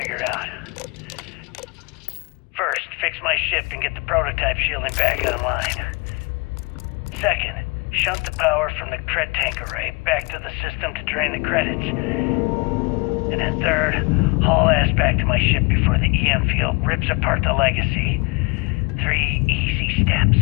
out. First, fix my ship and get the prototype shielding back online. Second, shunt the power from the cred tank array back to the system to drain the credits. And then third, haul ass back to my ship before the EM field rips apart the legacy. 3 easy steps,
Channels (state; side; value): quieter; right; 29.0 dB